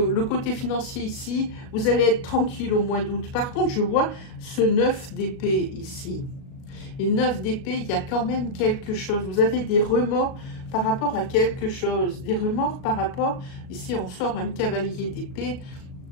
côté financier ici, vous allez être tranquille au mois d'août. Par contre, je vois ce 9 d'épée ici. Et 9 d'épée, il y a quand même quelque chose. Vous avez des remords par rapport à quelque chose. Des remords par rapport, ici on sort un cavalier d'épée,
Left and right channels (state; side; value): late; right; 37 ms